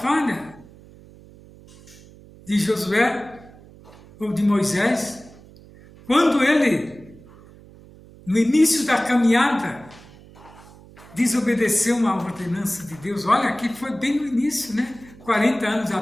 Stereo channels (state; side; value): noise; right; hum, 22 dB below the sound